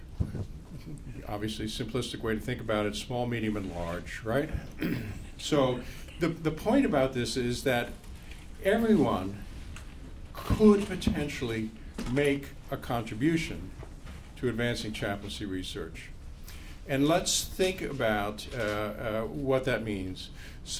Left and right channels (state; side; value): identical; both; correlation 1.00